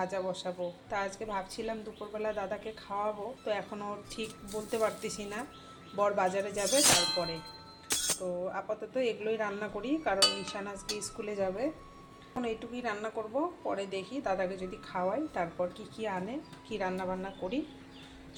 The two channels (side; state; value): both; identical; correlation 1.00